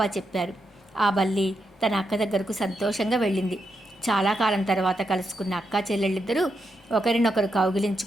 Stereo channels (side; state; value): both; normal; correlation 0.83